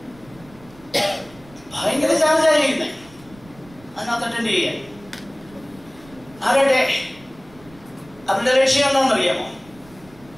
ഭയങ്കര ചാർജാണ് ചെയ്യുന്നത് അതിനകത്ത് അറ്റൻഡ് ചെയ്യാൻ. ആരുടെ അവരുടെ ലക്ഷ്യം എന്താണെന്നറിയാമോ?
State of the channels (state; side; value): noise; right; rumble, 24 dB below the sound